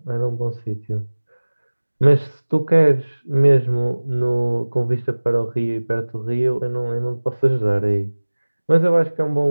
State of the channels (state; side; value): inverted; both; correlation -1.00